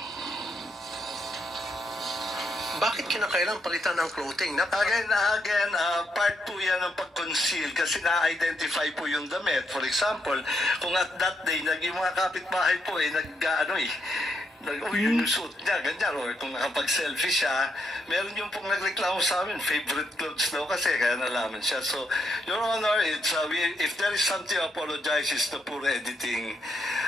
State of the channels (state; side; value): normal; both; correlation 0.78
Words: Bakit kinakailangan palitan ng clothing? Again, part po yan ng pag-conceal kasi na-identify po yung damit. For example, kung at that day, yung mga kapitbahay po yung suit niya, ganyan. Or kung nakapag-selfie siya, meron yung pong nagreklamo sa amin, favorite clothes daw kasi, kaya nalaman siya. So, Your Honor, it's, if there is something to apologize, it's the poor editing.